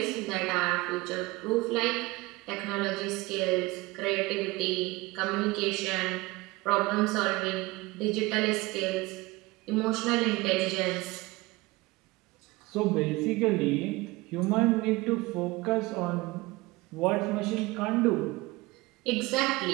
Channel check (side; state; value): left; quieter; 21.8 dB